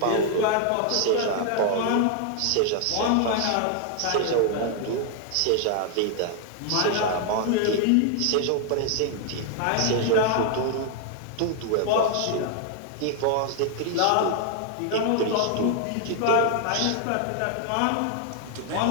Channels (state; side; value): different; both; correlation 0.00